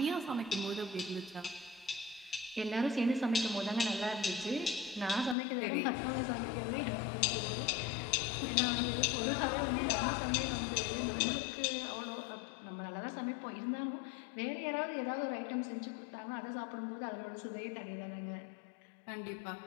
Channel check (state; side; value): drops out; right; at 5.4 s